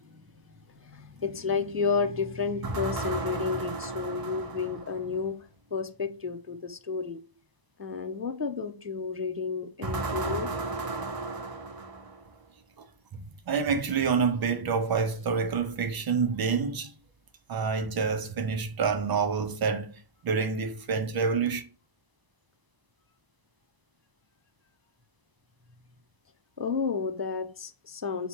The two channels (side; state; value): left; late; 1.0 ms